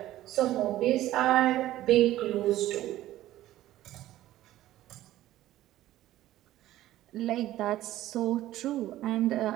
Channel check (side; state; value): left; quieter; 14.5 dB